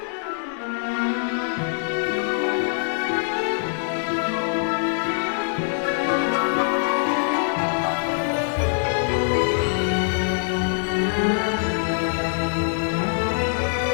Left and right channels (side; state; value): right; silent; digital silence